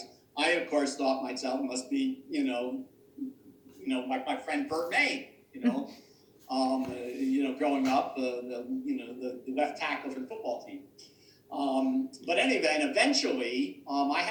I, of course, thought myself must be, like my friend Bert May, growing up, the left tackle for the football team. But anyway, and eventually, I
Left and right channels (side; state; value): both; identical; correlation 1.00